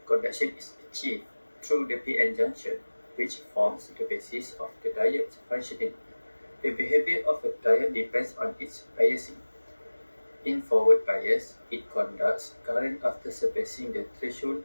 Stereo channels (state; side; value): inverted; both; correlation -1.00